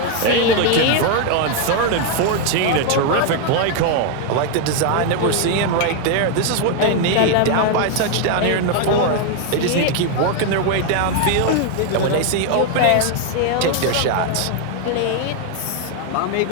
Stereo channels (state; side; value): different; both; correlation 0.01